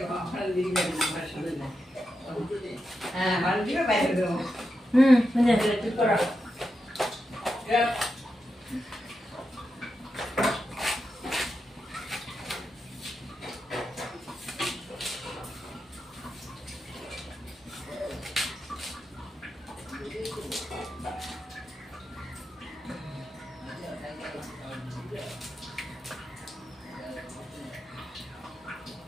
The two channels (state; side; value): normal; both; correlation 0.87